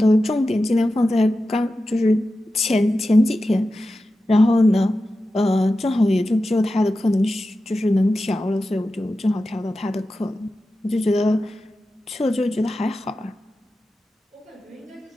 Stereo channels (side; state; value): both; normal; correlation 0.92